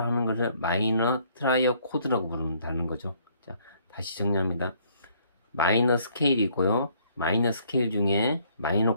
하는 것을 마이너 트라이어 코드라고 부른다는 거죠. 자, 다시 정리합니다. 마이너 스케일이고요. 마이너 스케일 중에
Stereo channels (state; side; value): inverted; both; correlation -0.64